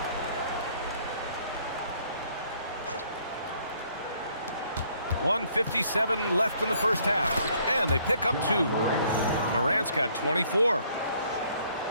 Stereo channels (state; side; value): inverted; both; correlation -0.64